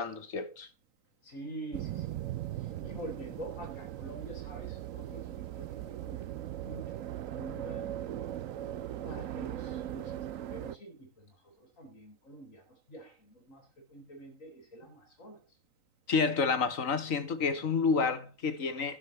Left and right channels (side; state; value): right; late; 3.9 ms